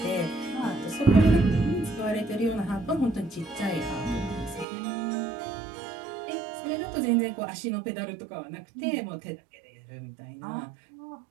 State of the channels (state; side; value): drops out; left; at 4.7 s